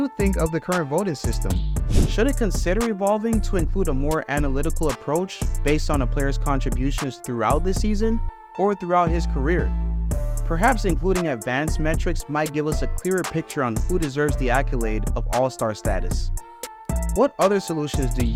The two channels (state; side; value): identical; both; correlation 1.00